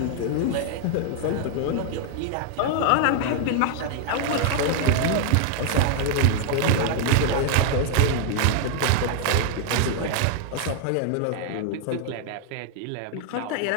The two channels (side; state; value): both; different; correlation 0.00